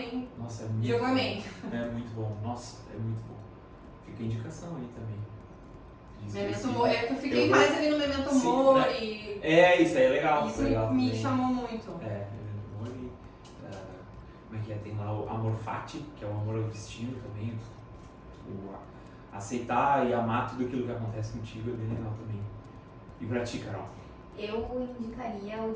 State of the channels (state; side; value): identical; both; correlation 1.00